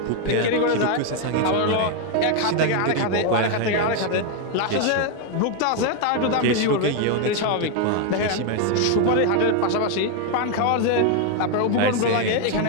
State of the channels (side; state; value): both; different; correlation 0.01